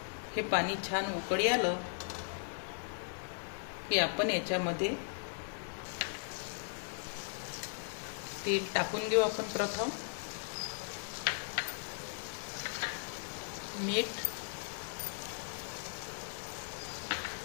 हे पाणी छान उकळी आलं की आपण याच्यामध्ये तेल टाकून घेऊ। आपण प्रथम मीठ,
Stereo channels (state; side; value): silent; right; digital silence